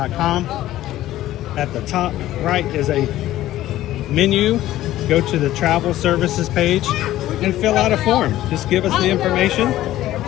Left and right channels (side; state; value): right; quieter; 14.4 dB